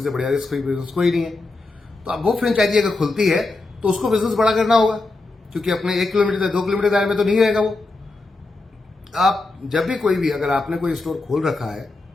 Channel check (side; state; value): right; quieter; 3.3 dB